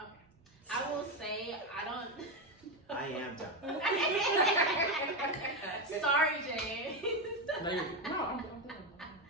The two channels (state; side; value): normal; both; correlation 0.10